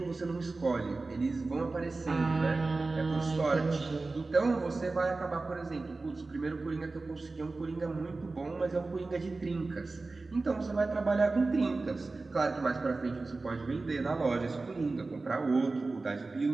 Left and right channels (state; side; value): quieter; left; 3.5 dB